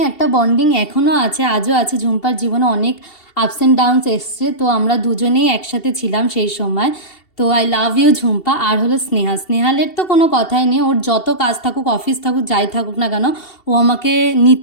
একটা বন্ডিং এখনও আছে, আজও আছে। ঝুম্পার জীবনে অনেক আপস অ্যান্ড ডাউনস এসছে, তো আমরা দুজনেই একসাথে ছিলাম সেই সময়। তো আই লাভ ইউ ঝুম্পা। আর হলো স্নেহালের তো কোনো কথাই নেই, ওর যত কাজ থাকুক, অফিস থাকুক, যাই থাকুক না কেন, ও আমাকে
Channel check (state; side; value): late; right; 2.7 ms